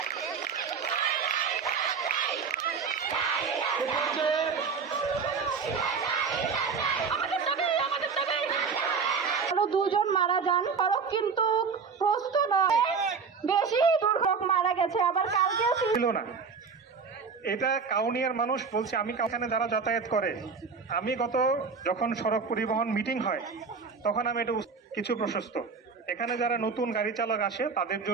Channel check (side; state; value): left; quieter; 5.4 dB